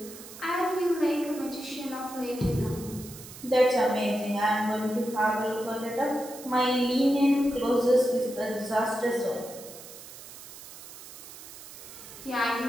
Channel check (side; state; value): right; noise; hiss, 15 dB below the sound